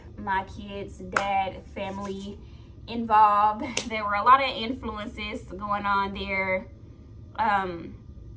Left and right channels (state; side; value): identical; both; correlation 1.00